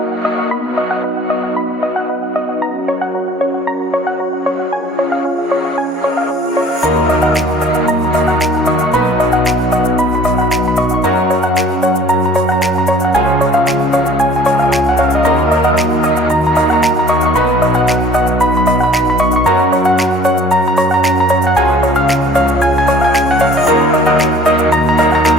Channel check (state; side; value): normal; both; correlation 0.51